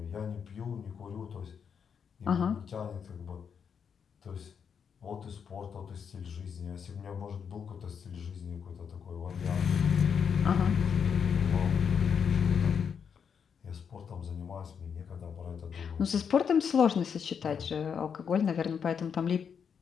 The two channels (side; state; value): right; quieter; 7.0 dB